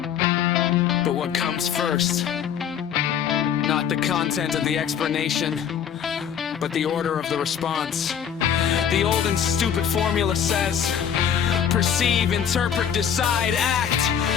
but what comes first. Not the content of the explanation, but the order of the response. The old and stupid formula says, perceive, interpret, decide, act.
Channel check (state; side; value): quieter; right; 8.4 dB